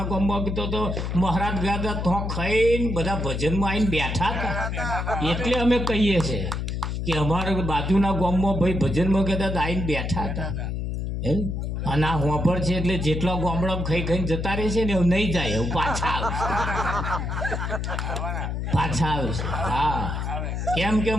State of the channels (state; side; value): noise; left; hum, 2 dB below the sound